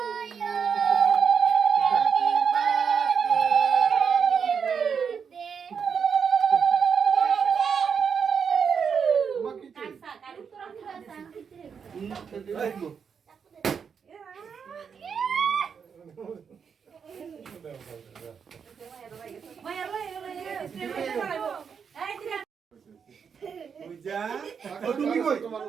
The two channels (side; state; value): left; quieter; 6.6 dB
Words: তুমি কই তোমার